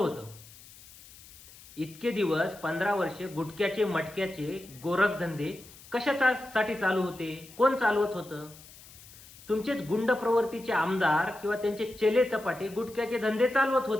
इतके दिवस 15 वर्षे गुटख्याचे मटक्याचे गोरखधंदे कशासाठी चालू होते? कोण चालवत होतं? तुमचेच गुंड प्रवृत्तीचे आमदार किंवा त्यांचे चेले चपाटे गुटख्याचे धंदे चालवत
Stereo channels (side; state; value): left; noise; hiss, 21 dB below the sound